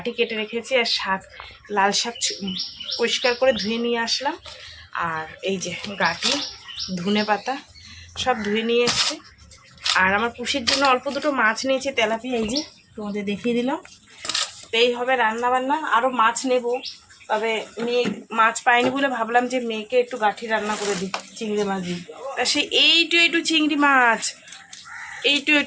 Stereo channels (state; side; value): identical; both; correlation 1.00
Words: কেটে রেখেছি, আর শাক, লাল শাক পরিষ্কার করে ধুয়ে নিয়ে আসলাম। আর এই যে গাঁটি, ধনে পাতা সব ধুয়ে নিয়ে এসছি। আর আমার পুষির জন্য অল্প দুটো মাছ নিয়েছি, তেলাপিয়া, এই যে তোমাদের দেখিয়ে দিলাম। তো এই হবে রান্না বান্না। আরও মাছ নেব, তবে মেয়ে মাছ পাইনি বলে ভাবলাম যে মেয়েকে একটু গাঁঠি রান্না করে দিই চিংড়ি মাছ দিই। তা সে এইটু চিংড়ি মাছ,